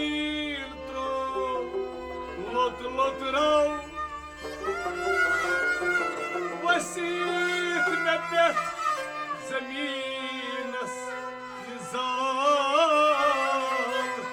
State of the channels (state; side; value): identical; both; correlation 1.00